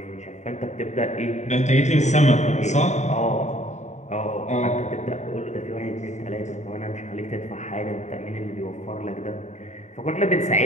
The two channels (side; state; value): right; late; 0.34 ms